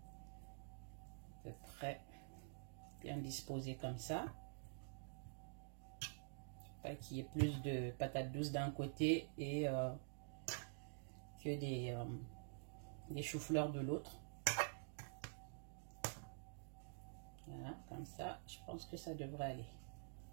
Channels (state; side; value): silent; left; digital silence